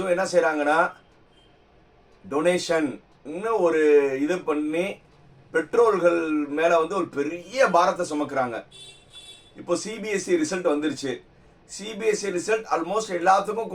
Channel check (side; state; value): both; identical; correlation 1.00